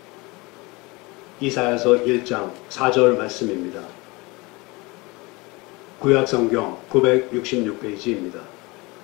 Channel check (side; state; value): right; quieter; 24.6 dB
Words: 이사야서 1장 4절 말씀입니다. 구약성경 966페이지입니다.